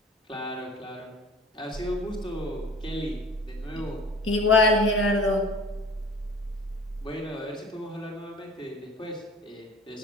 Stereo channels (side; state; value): both; normal; correlation 0.44